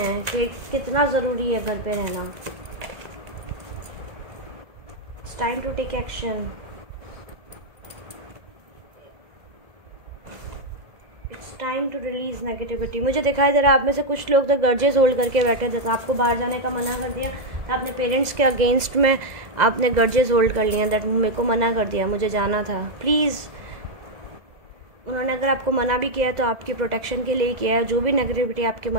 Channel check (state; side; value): late; left; 2.0 ms